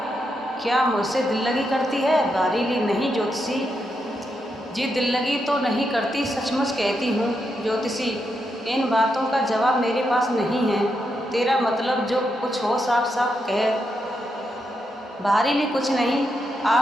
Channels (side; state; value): both; normal; correlation 0.83